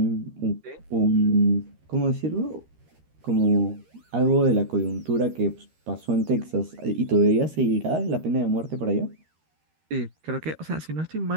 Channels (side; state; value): left; late; 13 ms